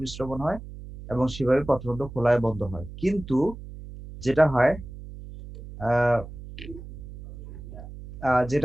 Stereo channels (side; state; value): right; noise; hum, 14 dB below the sound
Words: হয় এবং সেভাবে পত্ররন্ধ্র খোলায় বন্ধ হয়। কিন্তু যেটা হয় আহ